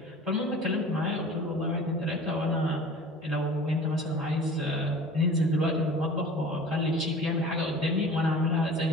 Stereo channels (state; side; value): normal; both; correlation 0.42